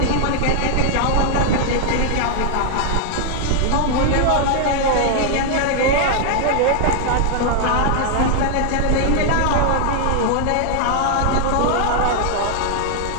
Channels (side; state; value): both; different; correlation 0.00